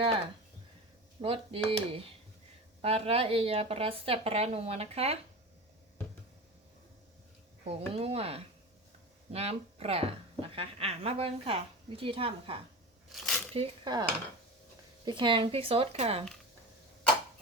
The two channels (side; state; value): both; normal; correlation 0.29